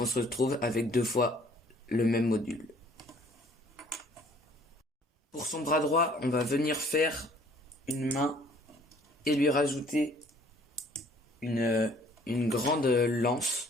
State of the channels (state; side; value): normal; both; correlation 0.56